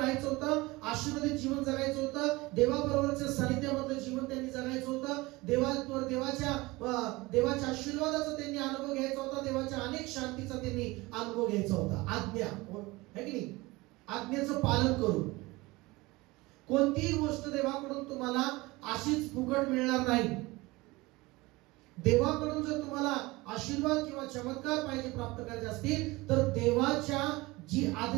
होतं, आशीर्वादित जीवन जगायचं होतं, देवाबरोबरच्या सानिध्यामधलं जीवन त्यांनी जगायचं होतं, देवाच्या आशीर्वादाचा त्यांनी अनुभव घ्यायचा होता, देवाच्या अनेक शांतीचा त्यांनी अनुभव घ्यायचा होता. आज्ञा है की नाही? आज्ञेचं पालन करून. कोणतीही गोष्ट देवाकडून तुम्हाला अशीच फुकट मिळणार नाही. देवाकडून जर तुम्हाला आशीर्वाद किंवा चमत्कार पाहिजे प्राप्त करायचे असतील तर देवाच्या जी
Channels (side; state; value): left; quieter; 21.8 dB